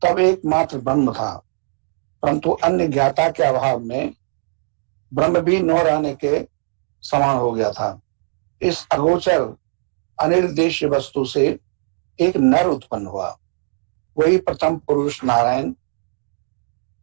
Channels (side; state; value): left; silent; digital silence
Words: तब एकमात्र ब्रह्म था, परंतु अन्य ज्ञाता के अभाव में ब्रह्म भी न रहने के समान हो गया था। इस अगोचर अनिर्देश्य वस्तु से एक नर उत्पन्न हुआ, वही प्रथम पुरुष नारायण